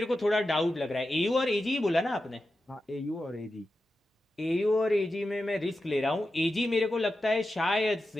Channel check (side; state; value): both; normal; correlation 0.91